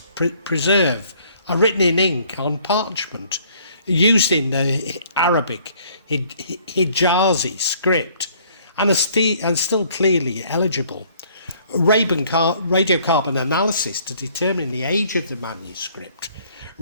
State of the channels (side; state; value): both; inverted; correlation -0.60